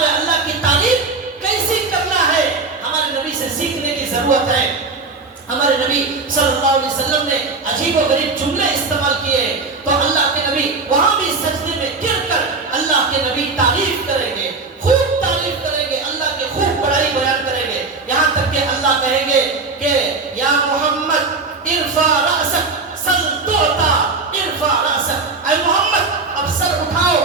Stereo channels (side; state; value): left; quieter; 4.0 dB